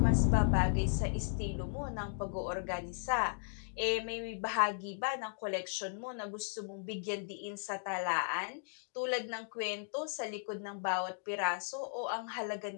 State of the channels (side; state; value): right; silent; digital silence